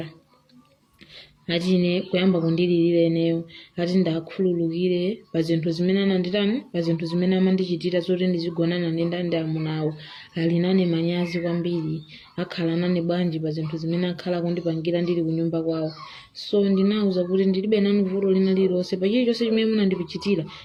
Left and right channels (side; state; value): both; identical; correlation 1.00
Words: ati ine kuyamba kundilirira eneyo ati ndakhululukire pa zinthu zimene ananditani pa zinthu zimene amandichitira zoti ndizigonana ndi ndandi amunawo ali nane manyazi kwambiri akhala nane bwanji pa zinthu zimene akhala kundipangira ndili kunyumba kwawo. So ndinauza kuti ndilibe nanu vuto lina lililonse pa chilichonse chimene munandipichitira